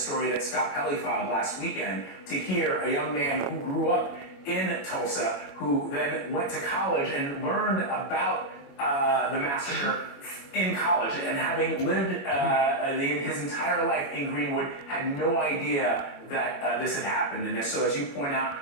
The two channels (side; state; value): right; late; 21 ms